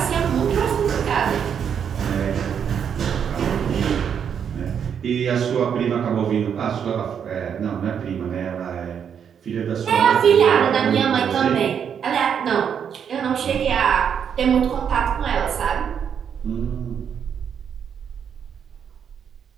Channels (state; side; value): quieter; left; 7.8 dB